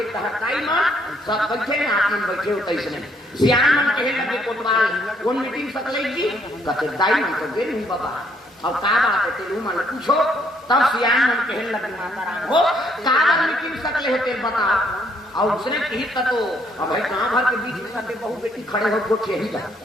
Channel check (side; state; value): both; normal; correlation 0.68